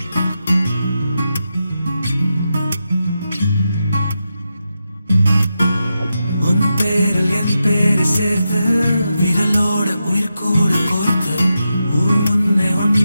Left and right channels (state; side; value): inverted; both; correlation -0.88